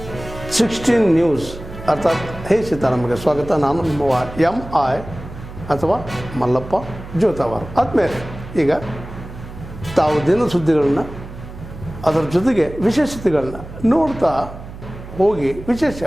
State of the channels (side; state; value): right; noise; hum, 14 dB below the sound